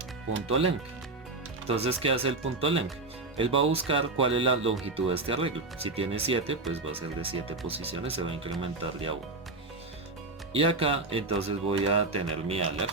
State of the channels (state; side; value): quieter; left; 3.2 dB